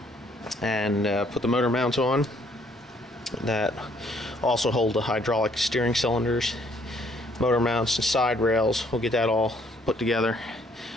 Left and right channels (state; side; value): normal; both; correlation 0.65